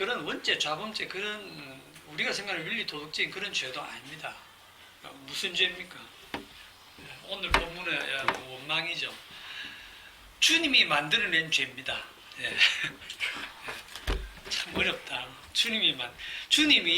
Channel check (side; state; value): both; identical; correlation 1.00